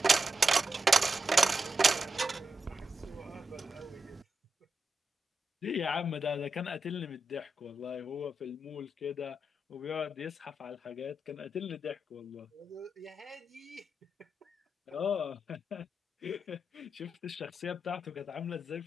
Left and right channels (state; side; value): normal; both; correlation 0.87